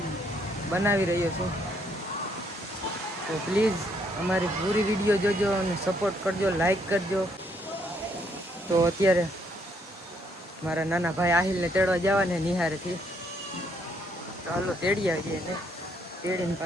બનાવી રહ્યો છું. તો પ્લીઝ અમારી પૂરી વિડીયો જોજો અને સપોર્ટ કરજો, લાઈક કરજો. તો અત્યારે મારા નાના ભાઈ આહિલને તેડવા જવાને નિહારેથી. તો હાલો તેડી આવીએ ને તેડીને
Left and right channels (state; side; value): normal; both; correlation 0.70